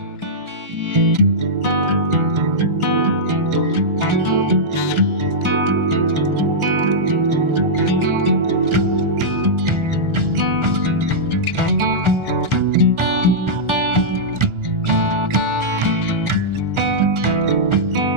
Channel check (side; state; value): left; late; 1.4 ms